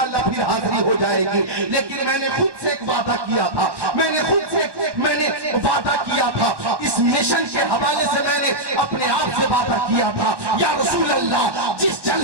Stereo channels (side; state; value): left; late; 1.1 ms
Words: پھر حاضری ہو جائے گی. لیکن میں نے خود سے ایک وعدہ کیا تھا، میں نے وعدہ کیا تھا، اس مشن کے حوالے سے میں نے اپنے آپ سے وعدہ کیا تھا یا رسول اللہ جس